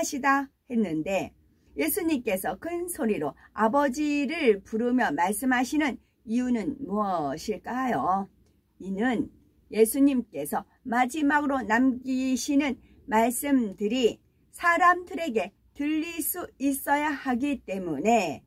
했는데 예수님께서 큰 소리로 아버지를 부르며 말씀하시는 이유는 무엇일까요? 이는 예수님께서 마지막으로 남기시는 말씀들이 사람들에게 들릴 수 있어야 하기 때문에,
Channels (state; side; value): identical; both; correlation 1.00